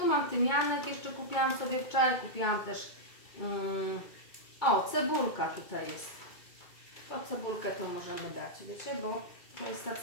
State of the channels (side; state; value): right; late; 2.2 ms